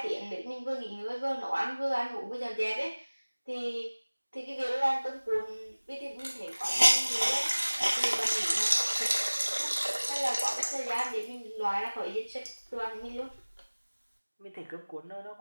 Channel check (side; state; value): both; inverted; correlation -1.00